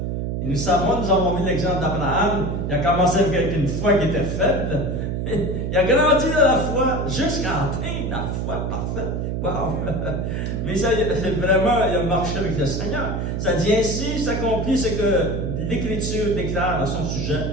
Et nous avons vu l'exemple d'Abraham. Il a commencé avec une foi qui était faible. Il a grandi dans la foi jusqu'à atteindre la foi parfaite. Wow! Mais ça, vraiment, il a marché avec le Seigneur. Ça dit ainsi, s'accomplit ce que l'Écriture déclare à son sujet.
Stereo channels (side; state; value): right; noise; hum, 2 dB below the sound